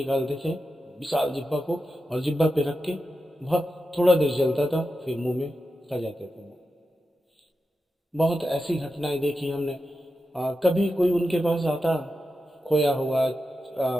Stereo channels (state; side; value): normal; both; correlation 0.90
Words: थे, विशाल जिब्बा को, और जिब्बा पे रख के वह थोड़ा देर जलता था, फिर मुंह में खा जाते थे। बहुत ऐसी घटनाएं देखी हमने। कभी कोई उनके पास आता, खोया हुआ